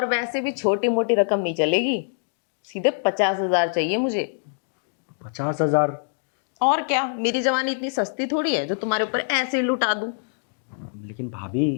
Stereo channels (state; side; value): silent; right; digital silence